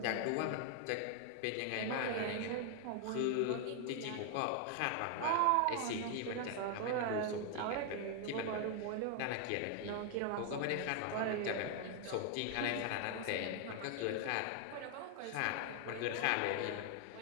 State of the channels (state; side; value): different; both; correlation 0.00